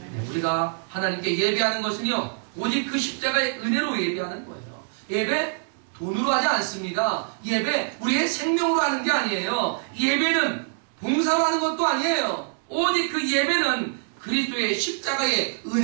네, 우리가 하나님께 예배하는 것은요, 오직 그 십자가의 은혜로 예배하는 거예요. 예배 돈으로 하지 않습니다. 예배 우리의 생명으로 하는 게 아니에요. 예배는 봉사로 하는 것도 아니에요. 오직 그 예배는 그리스도의 십자가의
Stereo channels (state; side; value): silent; left; 61 dB below the other